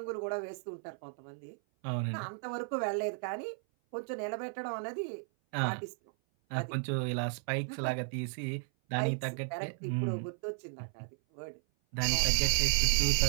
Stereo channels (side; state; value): left; silent; 55 dB below the other